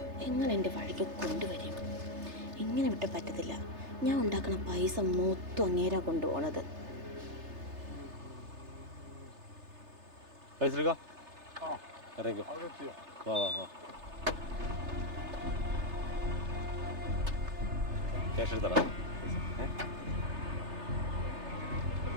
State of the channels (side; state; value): left; late; 3.3 ms